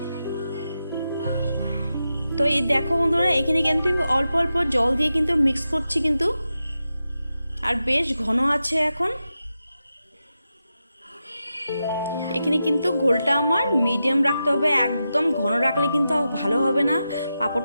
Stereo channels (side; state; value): both; inverted; correlation -0.90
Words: তো এই দেখো বন্ধুরা, এখানে কিন্তু আমি অল্প অল্প জল দিয়ে কিন্তু মিক্স করছি কিন্তু, আর বেশ ঘন আছে এখন। এখানে কিন্তু ঘোলটা আমার মিডিয়াম রাখতে হবে, একদম ঘন রাখলে কিন্তু ভালো হবে না,